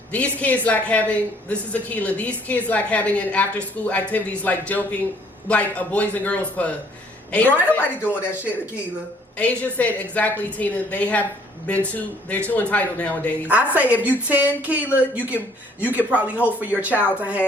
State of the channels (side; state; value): both; normal; correlation 0.61